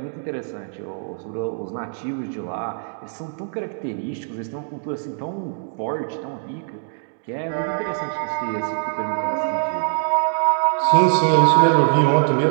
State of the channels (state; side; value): silent; left; digital silence